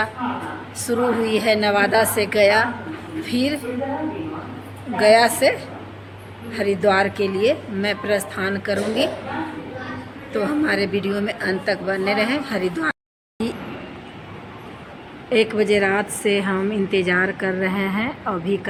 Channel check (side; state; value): both; identical; correlation 1.00